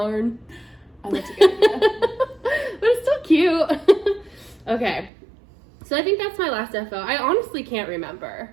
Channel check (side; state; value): left; drops out; at 5.1 s